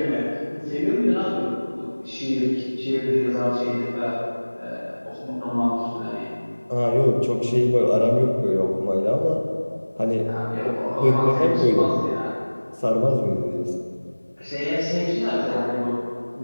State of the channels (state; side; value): inverted; both; correlation -1.00